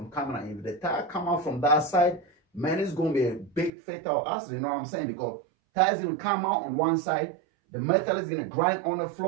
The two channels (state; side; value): drops out; left; at 3.7 s